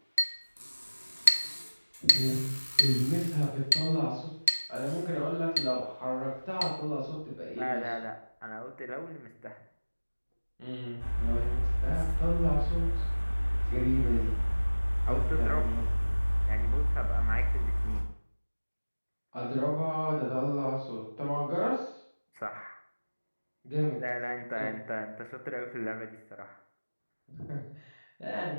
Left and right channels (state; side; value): inverted; both; correlation -1.00